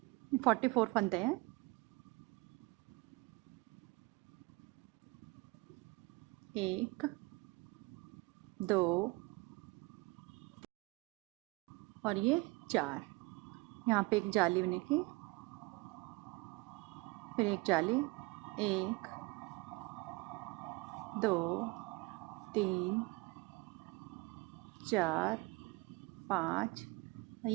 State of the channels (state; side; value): quieter; left; 23.9 dB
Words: 44 फंदे हैं। 1 2 और ये 4। यहाँ पे एक जाली बनेगी, फिर एक जाली, 1 2 3 4 5